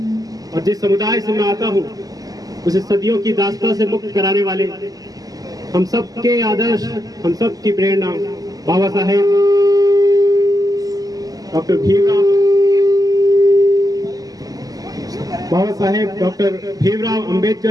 और जिस समुदाय से मैं आता हूँ उसे सदियों की दास्ता से मुक्त कराने वाले हम सब के आदर्श, हम सब की प्रेरणा बाबा साहेब डॉक्टर भीमराव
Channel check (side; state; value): left; late; 0.17 ms